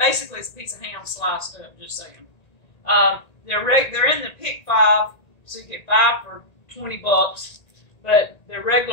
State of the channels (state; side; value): late; right; 1.9 ms